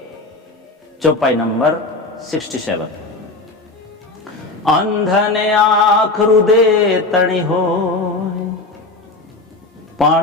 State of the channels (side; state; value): right; quieter; 3.2 dB